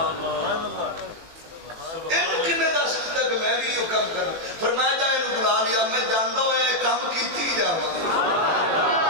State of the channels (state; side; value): late; left; 18 ms